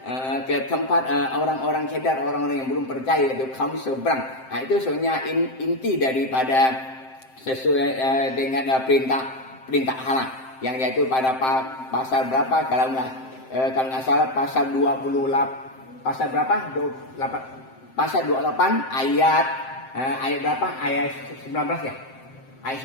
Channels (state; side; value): late; right; 7.7 ms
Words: ke tempat orang-orang cedar, orang-orang yang belum percaya, itu kaum seberang. Nah, itu sebenarnya inti daripada sesuai dengan perintah Allah, yang yaitu pada pasal berapa kalau nggak salah pasal 28 pasal 28 ayat berapa, ayat 19 ya, ayat